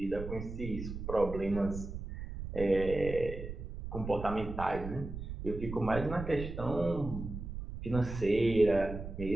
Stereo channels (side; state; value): right; noise; rumble, 8 dB below the sound